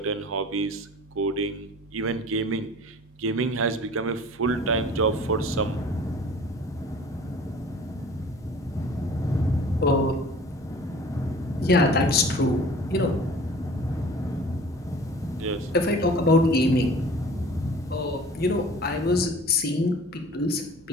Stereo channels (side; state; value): both; normal; correlation 0.45